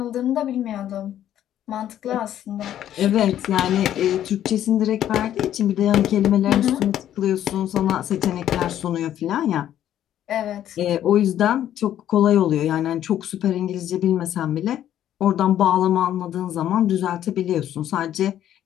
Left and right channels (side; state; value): right; quieter; 11.3 dB